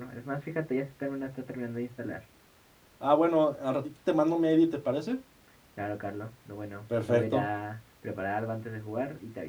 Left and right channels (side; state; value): both; identical; correlation 1.00